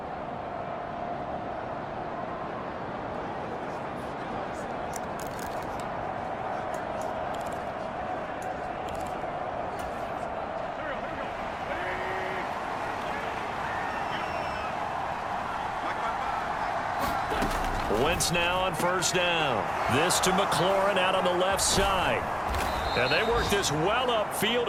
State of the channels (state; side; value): identical; both; correlation 1.00